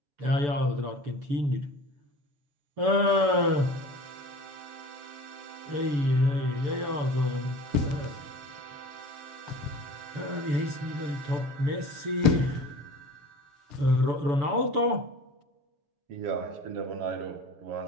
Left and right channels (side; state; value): left; late; 6.9 ms